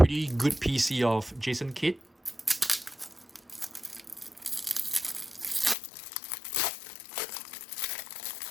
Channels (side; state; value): right; drops out; at 5.8 s